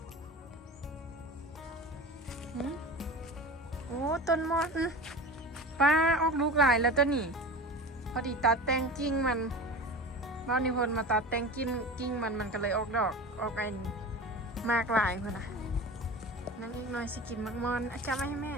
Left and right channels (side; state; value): both; normal; correlation 0.32